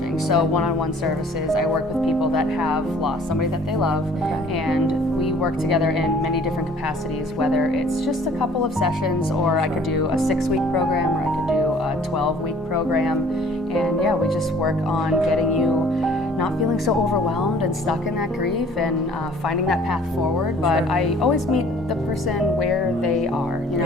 So one-on-one services. I work with people that have lost somebody that they love, and we work together in many different capacities, whether it's just a couple of sessions, or I could do a 6-week program, or I could do a 12-week program. And yeah, we just work on getting you not feeling so overwhelmed and stuck in that grief, and finding that path forward. But I always meet the person where they are. You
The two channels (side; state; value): both; normal; correlation 0.54